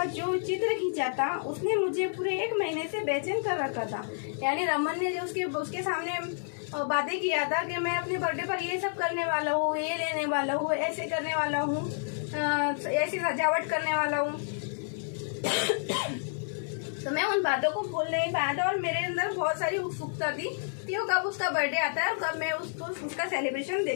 जो चित्र खींचा था उसने मुझे पूरे 1 महीने से बेचैन कर रखा था। यानी रमन ने जो उसके सामने बातें किया था कि मैं अपने बर्थडे पर ये सब करने वाला हूँ, ये लेने वाला हूँ, ऐसे करने वाला हूँ, ऐसी सजावट करने वाला हूँ तो मैं उन बातों को भूल नहीं पाया था, और मेरे अंदर बहुत सारी उत्सुकता थी कि वो कब उसका बर्थडे आता है और कब मैं उसका सेलिब्रेशन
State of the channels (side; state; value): right; silent; digital silence